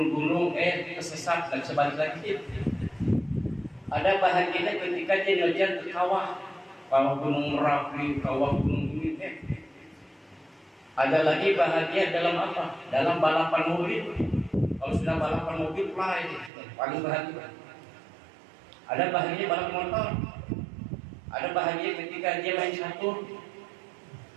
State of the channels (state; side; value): drops out; left; at 16.5 s